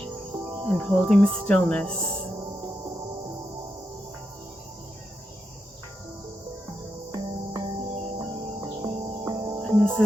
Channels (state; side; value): normal; both; correlation 0.86